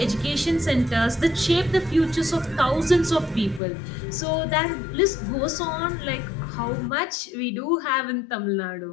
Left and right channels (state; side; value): drops out; right; at 3.6 s